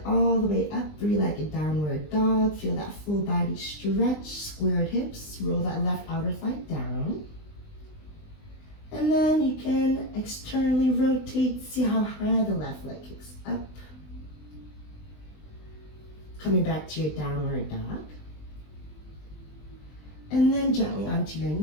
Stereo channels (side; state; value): right; late; 20 ms